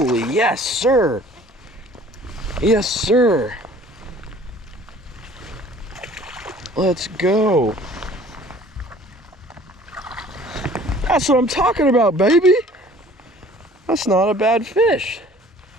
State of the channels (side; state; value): both; normal; correlation 0.51